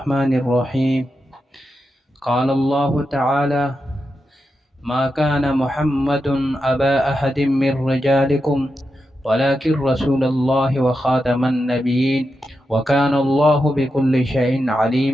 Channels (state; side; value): normal; both; correlation 0.88